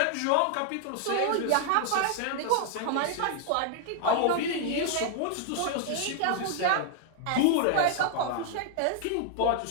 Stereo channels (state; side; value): different; both; correlation 0.00